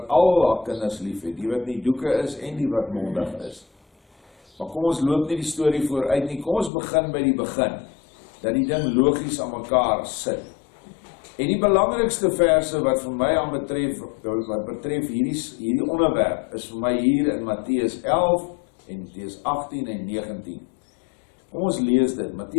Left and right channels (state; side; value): drops out; right; at 6.7 s